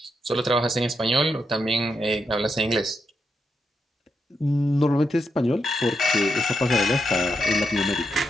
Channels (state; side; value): normal; both; correlation 0.83